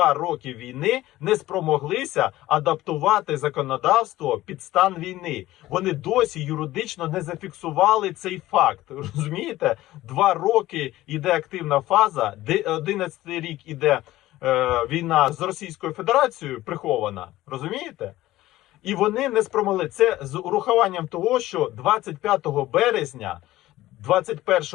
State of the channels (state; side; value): quieter; right; 16.1 dB